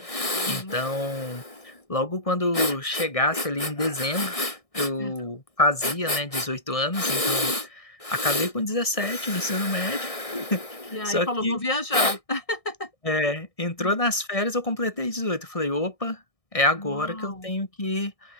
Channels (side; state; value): right; late; 1.6 ms